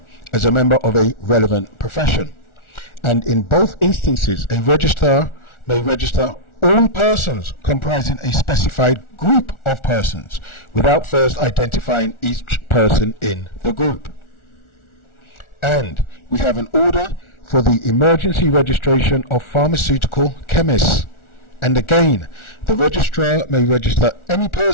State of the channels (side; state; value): right; late; 1.4 ms